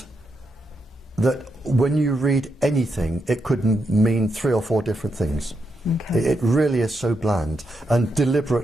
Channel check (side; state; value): both; normal; correlation 0.83